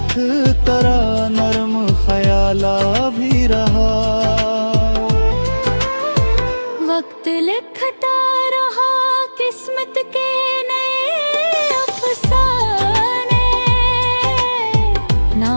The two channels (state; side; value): inverted; both; correlation -1.00